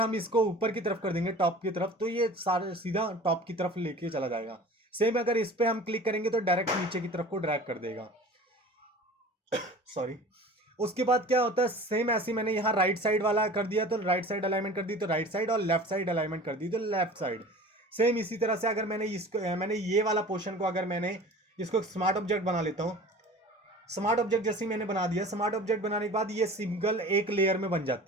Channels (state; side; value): normal; both; correlation 0.41